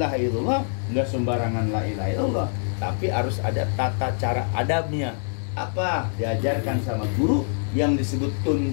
illallah, nggak sembarangan la ilaha illallah, tapi harus ada tata cara adabnya. Apa? Diajarkan sama guru yang disebut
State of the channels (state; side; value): silent; right; 61 dB below the other